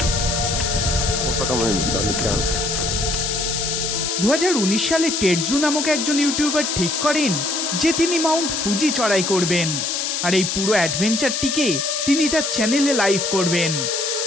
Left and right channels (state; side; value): noise; left; hiss, 1 dB below the sound